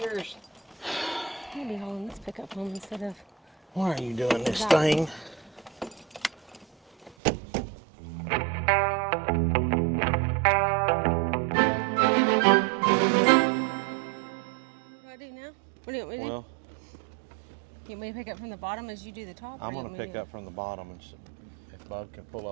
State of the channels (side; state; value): left; drops out; at 7.2 s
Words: I'm gonna be hauling this pickup home instead of. Why are you doing this thing? What do I do now? What do you want me to do? Well, You want me to pick up from the bottom as you do the top? I'm going to pick up from the bottom, and if Bud can pull